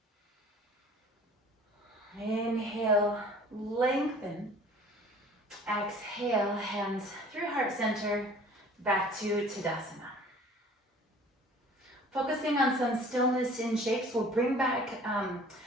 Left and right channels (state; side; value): normal; both; correlation 0.49